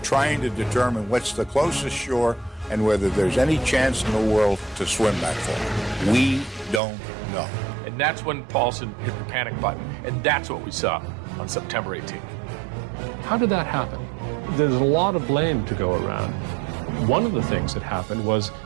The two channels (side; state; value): left; drops out; at 6.8 s